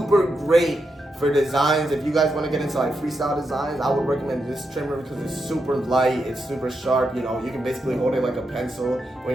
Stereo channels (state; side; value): normal; both; correlation 0.85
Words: great for designs. If you guys want to get into like freestyle designs, I would recommend this trimmer because it's super light, it's super sharp. You can basically hold it like a pencil